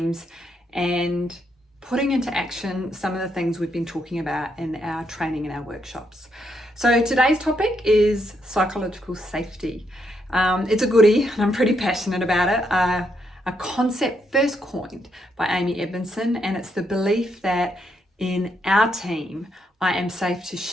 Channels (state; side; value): normal; both; correlation 0.77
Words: and putting into action some of the things we've been talking about in our training and our workshops. So today's topic is psychological safety. It's a goodie and I'm pretty passionate about it. A concept first coined by Amy Edmondson, and it's the belief that in our team, I am safe to